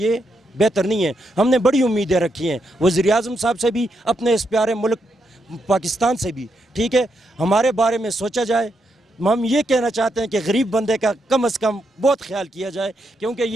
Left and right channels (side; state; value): both; normal; correlation 0.81